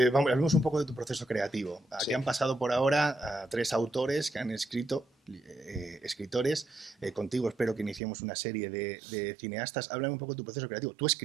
hablemos un poco de tu proceso creativo. Aquí Sí. han pasado por ahora a 3 autores que han escrito, escritores. Contigo espero que iniciemos una serie de cineastas. Háblame un poco de tu proceso creativo. ¿Tú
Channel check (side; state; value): left; drops out; at 8.0 s